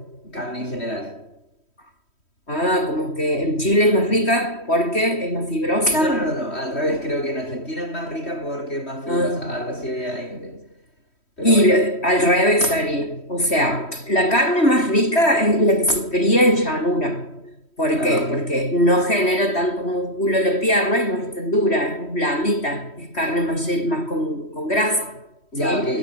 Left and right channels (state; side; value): late; right; 3.1 ms